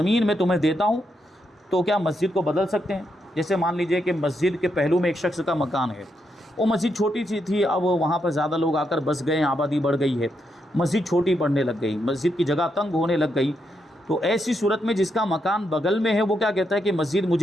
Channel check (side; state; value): both; normal; correlation 0.81